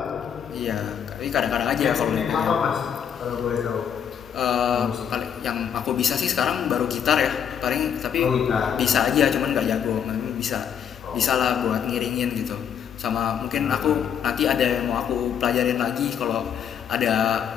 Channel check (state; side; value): quieter; right; 8.3 dB